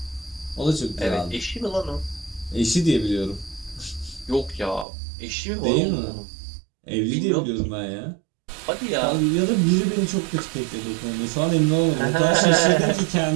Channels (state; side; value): drops out; left; at 4.9 s